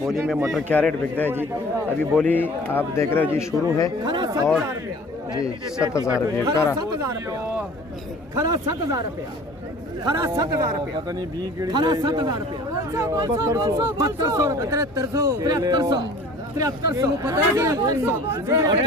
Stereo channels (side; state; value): both; normal; correlation 0.46